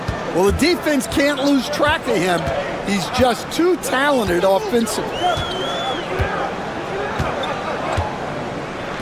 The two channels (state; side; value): identical; both; correlation 1.00